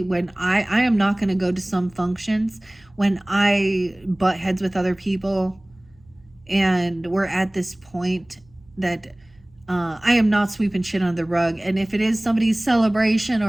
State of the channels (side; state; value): right; noise; hum, 30 dB below the sound